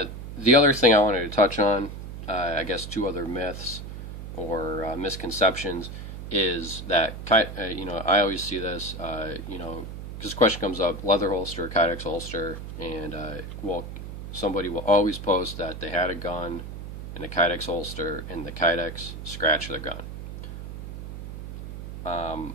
The other thing I wanted to touch on, I guess two other myths or misconceptions, is that I always see this, because this question comes up: leather holster, Kydex holster, and somebody will always post that they had a gun in a Kydex holster and the Kydex scratched their gun.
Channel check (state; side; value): noise; right; hum, 9 dB below the sound